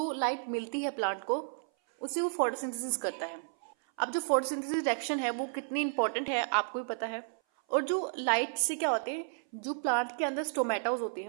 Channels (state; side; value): silent; left; 56 dB below the other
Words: लाइट मिलती है प्लांट को, उसे वो फोटोसिंथेसिस करता है। अब जो फोटोसिंथेसिस रिएक्शन है वो कितनी इंपॉर्टेंट है आपको भी पता है। और जो लाइट से क्या होते हैं, जो प्लांट के अंदर स्टोमेटास होते